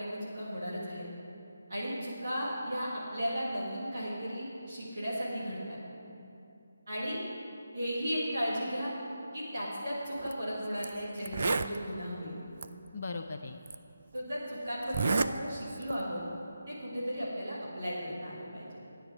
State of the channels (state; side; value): inverted; both; correlation -0.89